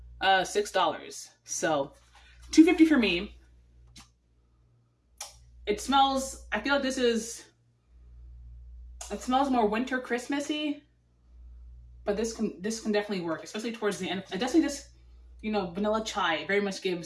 $6. So $2.50 for me. It smells, I feel like it smells more winter Christmassy, but this can definitely work, especially towards the end. It definitely just, vanilla chai very much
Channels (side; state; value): both; identical; correlation 1.00